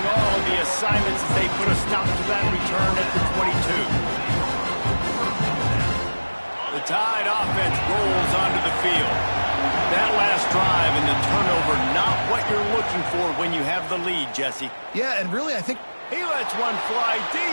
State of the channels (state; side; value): inverted; both; correlation -1.00